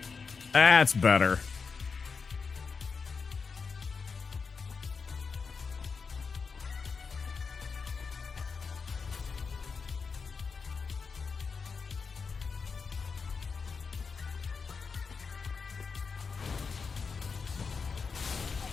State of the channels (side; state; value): right; quieter; 5.2 dB